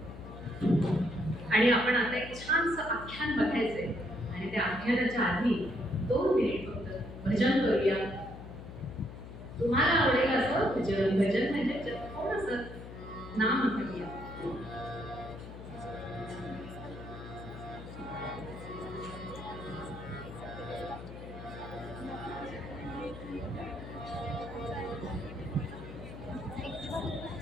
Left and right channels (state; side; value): noise; left; hum, 12 dB below the sound